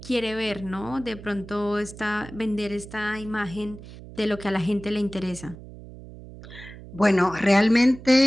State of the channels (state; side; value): noise; right; hum, 16 dB below the sound